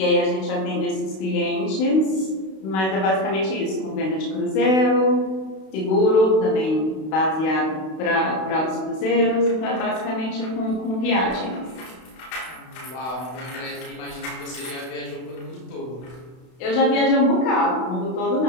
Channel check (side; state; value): right; late; 32 ms